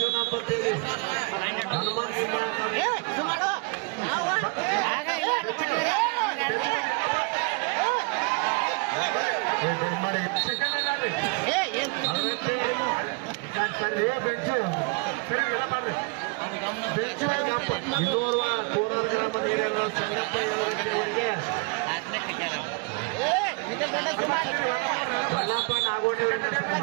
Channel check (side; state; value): left; quieter; 30.6 dB